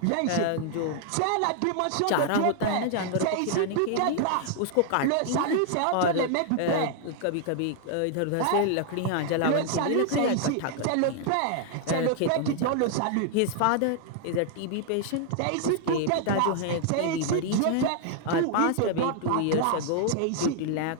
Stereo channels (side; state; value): both; different; correlation 0.00